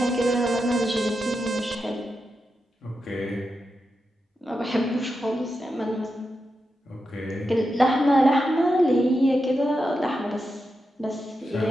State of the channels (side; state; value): both; normal; correlation 0.88